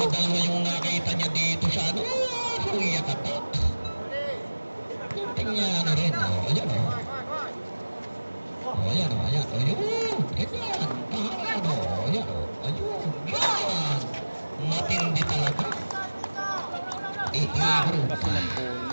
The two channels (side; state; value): both; inverted; correlation -1.00